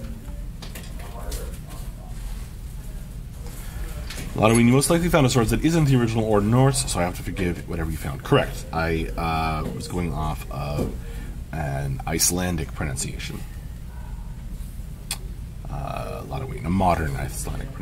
Lotoween, you most likely found a source that isn't the original or Norse, so I have to forgive whatever you found. Correct. I was going off of an Icelandic pronunciation. Lotoween, a modern Icelandic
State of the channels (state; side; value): identical; both; correlation 1.00